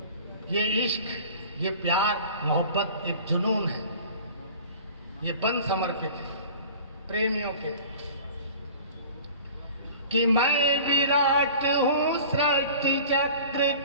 ये इश्क, ये प्यार मोहब्बत एक जुनून है, ये बंद समर्पित है प्रेमियों के। कि मैं विराट हूँ सृष्टि चक्र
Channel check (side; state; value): both; inverted; correlation -0.43